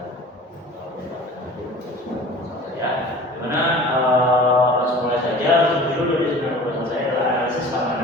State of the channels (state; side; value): normal; both; correlation 0.42